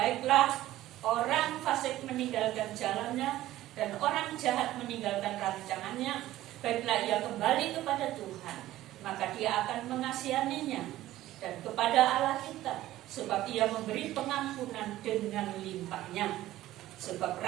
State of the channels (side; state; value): left; quieter; 15.0 dB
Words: orang fasik meninggalkan jalannya dan orang jahat meninggalkan rancangannya, baiklah ia kembali kepada Tuhan, maka dia akan mengasihaninya, dan kepada Allah kita, sebab ia memberi pengampunan dengan limpahnya. Sebab